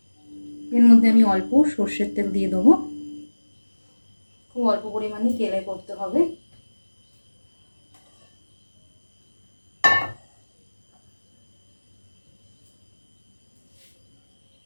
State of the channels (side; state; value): both; inverted; correlation -1.00